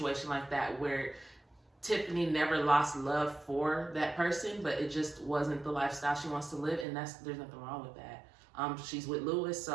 like that where Tiffany never lost love for that person, but it just wasn't the lifestyle she wants to live, and there's nothing wrong with that. She's with Louis,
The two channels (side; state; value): left; drops out; at 6.9 s